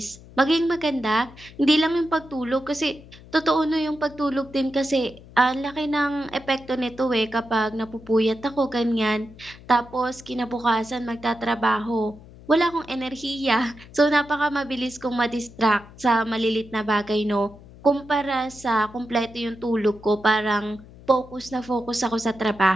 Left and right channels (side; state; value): left; noise; hum, 20 dB below the sound